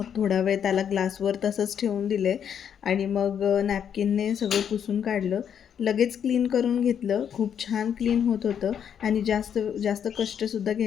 थोडा वेळ त्याला ग्लासवर तसंच ठेवून दिले आणि मग नॅपकिनने सगळं पुसून काढलं. लगेच क्लीन करून घेतलं. खूप छान क्लीन होत होतं आणि जास्त जास्त कष्टसुद्धा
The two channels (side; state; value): right; quieter; 8.4 dB